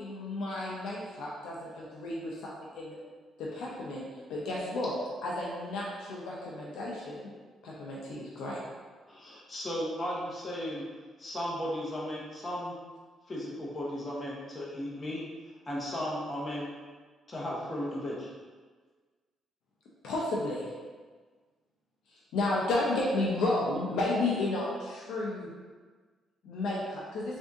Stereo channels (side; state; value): both; normal; correlation 0.69